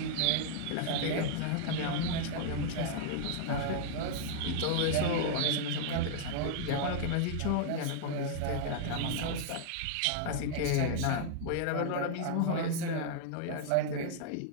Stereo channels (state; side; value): different; both; correlation -0.01